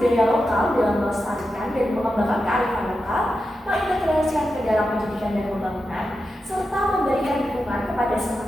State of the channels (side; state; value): both; normal; correlation 0.89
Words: lokal dalam melestarikan dan mengembangkan kearifan lokal, mengintegrasikan ke dalam pendidikan dan pembangunan, serta memberikan dukungan kepada